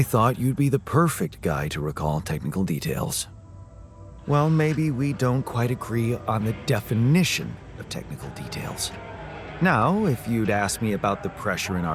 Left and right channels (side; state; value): both; identical; correlation 1.00